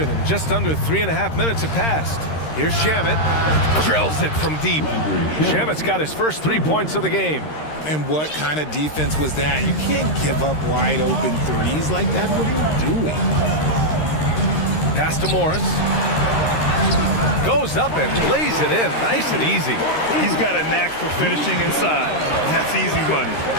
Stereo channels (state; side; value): late; right; 13 ms